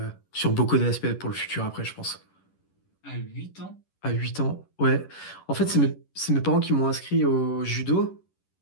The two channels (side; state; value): right; late; 11 ms